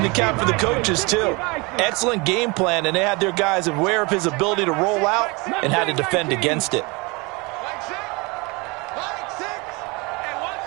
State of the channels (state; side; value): quieter; left; 26.8 dB